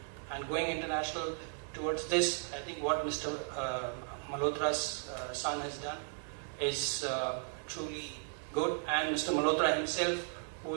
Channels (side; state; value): left; silent; 54 dB below the other